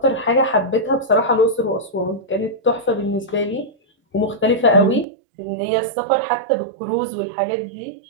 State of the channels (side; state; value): left; drops out; at 5.1 s